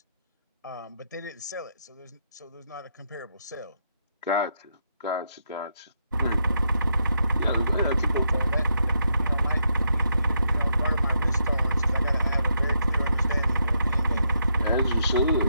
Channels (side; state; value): both; inverted; correlation -0.79